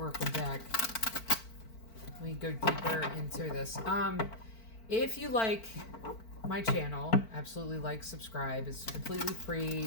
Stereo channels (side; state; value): right; late; 4.5 ms